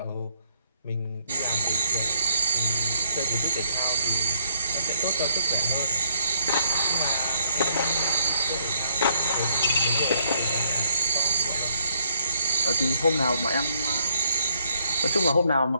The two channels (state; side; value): inverted; both; correlation -0.69